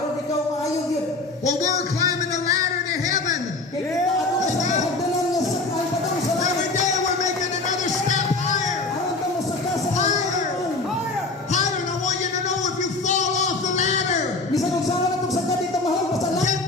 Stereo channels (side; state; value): right; quieter; 3.4 dB